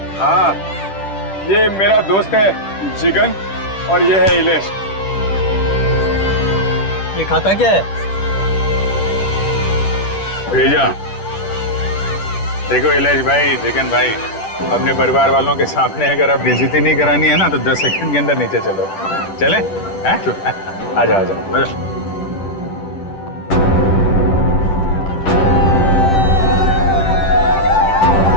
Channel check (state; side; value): late; right; 10 ms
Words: हाँ, ये मेरा दोस्त है जिगन और ये है इलेश। ये खाता क्या है? भेजा। देखो इलेश भाई, चिकन भाई, अपने परिवार वालों के सामने अगर आप बेइज्जती नहीं करानी है ना तो 10 सेकंड के अंदर नीचे चलो। चले? आ जाओ आ जाओ।